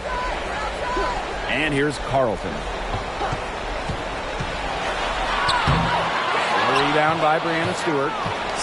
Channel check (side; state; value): both; identical; correlation 1.00